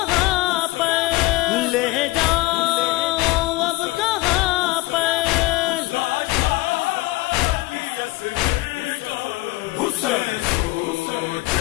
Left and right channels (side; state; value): right; quieter; 20.2 dB